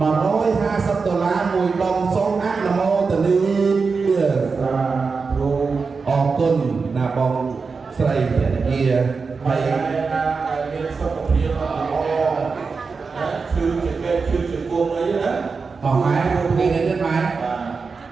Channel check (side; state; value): left; quieter; 4.8 dB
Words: $150មួយដុំសូមអនុមោទនាសាធុអរគុណណាបងស្រីភរិយាហើយណាមានសុខភាពល្អណាគឺជាគួងអីណាបងម៉ែនេះនេះម៉ែ